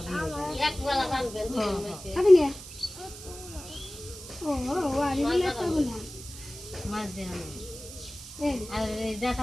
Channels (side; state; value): right; noise; hiss, 14 dB below the sound